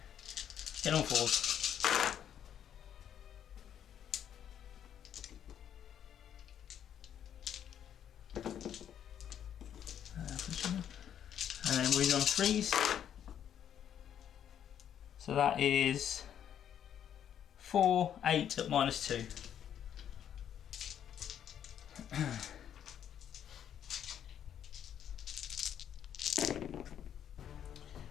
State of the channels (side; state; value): right; quieter; 9.5 dB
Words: Get on 4s. And then wounded on 3s. So that is 4, 8 at minus 2.